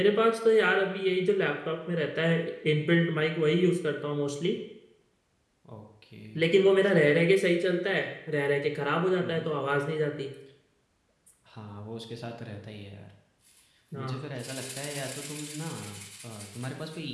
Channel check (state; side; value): identical; both; correlation 1.00